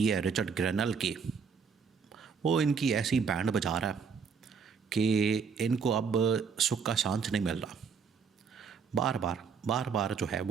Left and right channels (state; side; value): quieter; left; 6.0 dB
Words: है रिचर्ड ग्रेनल की, वो इनकी ऐसी बैंड बजा रहा है कि इनको अब सुख का सांस नहीं मिल रहा। बार बार जो है